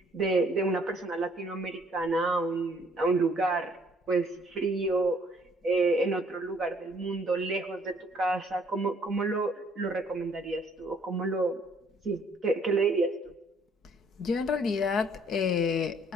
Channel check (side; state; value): both; normal; correlation 0.62